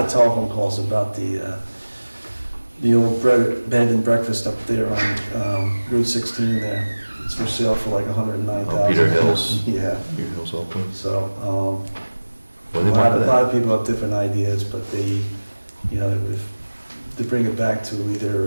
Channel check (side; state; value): both; inverted; correlation -1.00